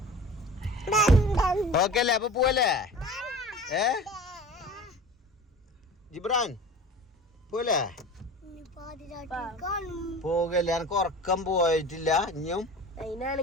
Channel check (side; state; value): both; normal; correlation 0.38